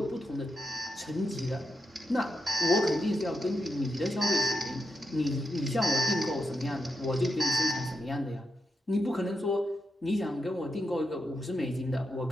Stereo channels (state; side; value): normal; both; correlation 0.85